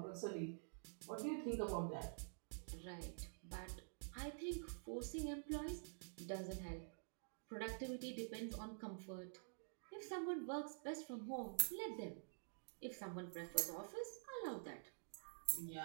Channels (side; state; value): left; silent; digital silence